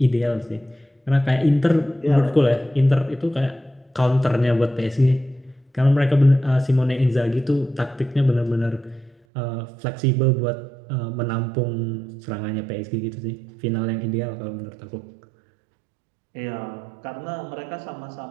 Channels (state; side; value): drops out; left; at 9.2 s